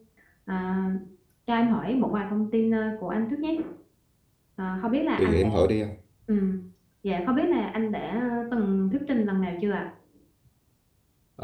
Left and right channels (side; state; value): both; identical; correlation 1.00